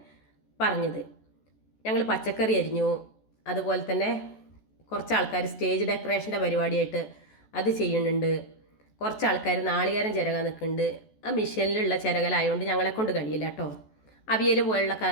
പറഞ്ഞത്. ഞങ്ങൾ പച്ചക്കറി അരിഞ്ഞു. അതുപോലെ തന്നെ കുറച്ച് ആൾക്കാർ സ്റ്റേജ് ഡെക്കറേഷൻ്റെ പരിപാടിയായിട്ട് അത് ചെയ്യുന്നുണ്ട്. കുറച്ച് ആൾക്കാർ നാളികേരം ചിരകാൻ നിൽക്കുന്നുണ്ട്. ആ മിഷനിലുള്ള ചിരകലായതുകൊണ്ട് ഞങ്ങളെ കൊണ്ട് കഴിയില്ല കേട്ടോ. അവിയൽ പോലുള്ള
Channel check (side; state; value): right; late; 14 ms